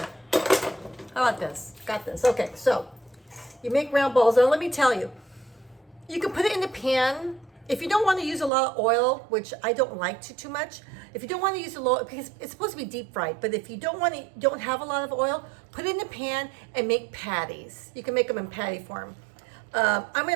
How about this? Got this. Okay, so you make round balls. Now, let me tell you. You can put it in the pan. If you don't want to use a lot of oil, which I don't like too much, if you don't want to use a lot, because it's supposed to be deep fried, but if you don't have a lot of oil, put it in the pan and make patties. You can make them in patty form. I'm going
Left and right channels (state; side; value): drops out; left; at 8.5 s